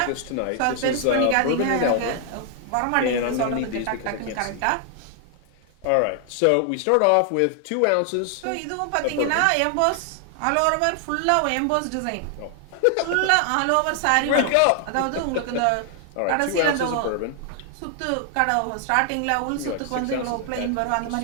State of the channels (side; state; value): both; different; correlation 0.00